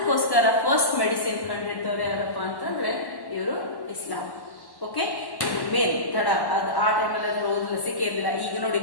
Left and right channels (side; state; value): right; late; 1.1 ms